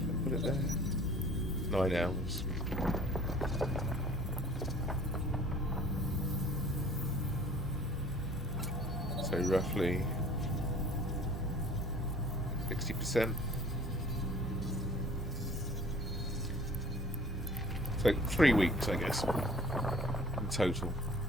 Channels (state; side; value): normal; both; correlation 0.50